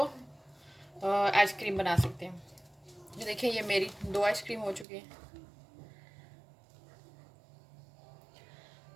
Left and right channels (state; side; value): drops out; left; at 4.9 s